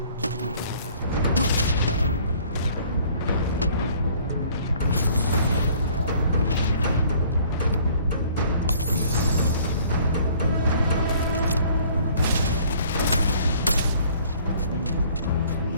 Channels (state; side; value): inverted; both; correlation -0.56